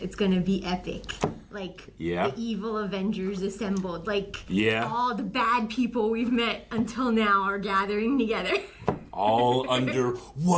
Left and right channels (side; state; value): both; identical; correlation 1.00